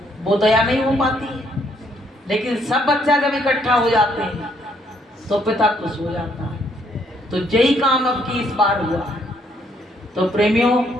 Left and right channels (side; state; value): both; normal; correlation 0.69